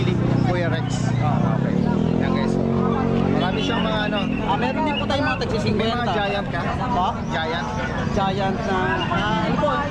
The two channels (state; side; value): identical; both; correlation 1.00